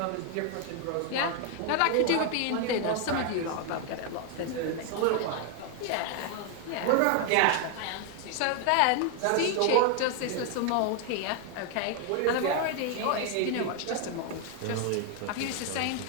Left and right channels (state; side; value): different; both; correlation 0.01